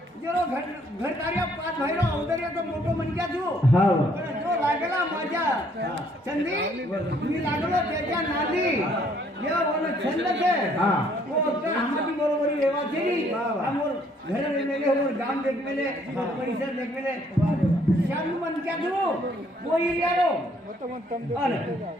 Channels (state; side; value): normal; both; correlation 0.65